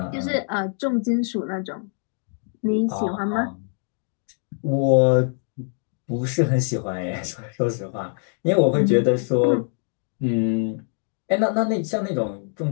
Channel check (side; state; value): right; silent; 60 dB below the other